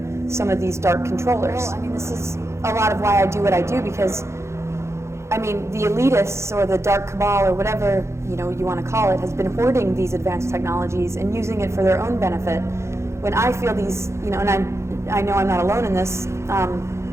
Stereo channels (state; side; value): late; left; 0.13 ms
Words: some of these dark controllers. Well, I mean, this is a lot of why I do what I do, because I mean, the elitists or the dark cabal or whatever you want to call it has been hoarding these advanced technologies and using it for their own benefit. When I feel these, and I know I'm not alone in this,